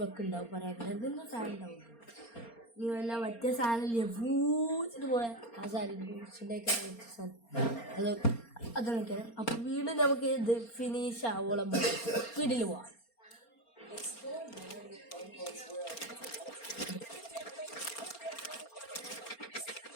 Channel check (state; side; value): late; right; 4.3 ms